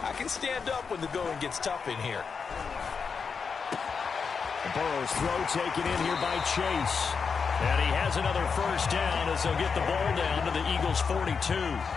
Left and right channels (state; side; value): quieter; right; 5.6 dB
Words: I can stand up when the going gets tough in here. Burrow's throw taken in here by Chase. And he has another first down as they'll get the ball down to the Eagles' 42.